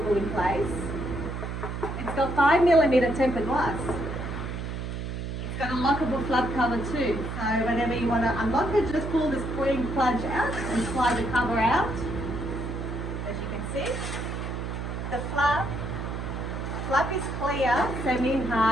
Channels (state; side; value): noise; right; hum, 5 dB below the sound